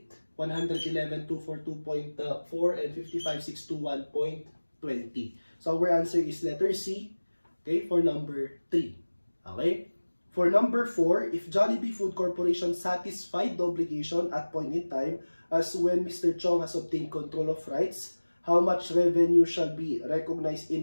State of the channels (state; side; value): inverted; both; correlation -1.00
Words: 111, 242.4, and 55,621.20. So, our answer is letter C, okay, for number 3. Okay? For number 4, if Jollibee Food Corporation satisfied the obligation at point in time, as when Mr. Chong has obtained control of rights, how much revenue shall be recognized in